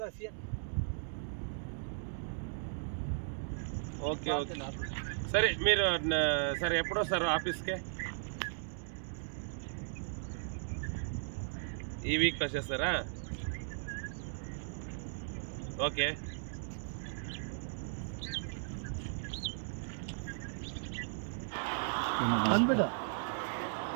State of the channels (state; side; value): silent; left; digital silence